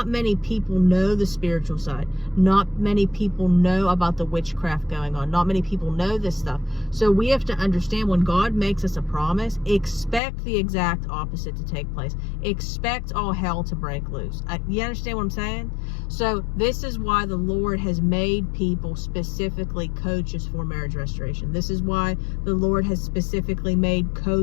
many people know the spiritual side. Not many people know about the witchcraft going on. Not many people know this stuff. So we have to understand, when God makes us a promise, expect the exact opposite to take place. Expect all hell to break loose. You understand what I'm saying? So this is why the Lord has made people specifically coaches for marriage restoration. This is why the Lord has specifically made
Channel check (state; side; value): drops out; right; at 10.2 s